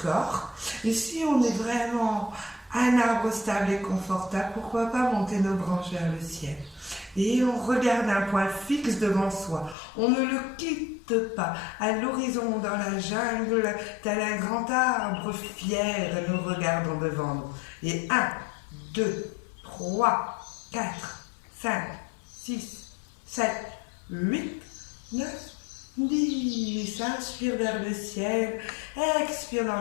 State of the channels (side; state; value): right; drops out; at 9.8 s